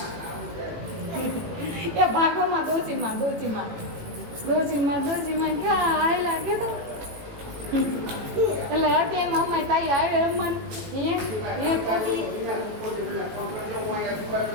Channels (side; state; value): left; late; 18 ms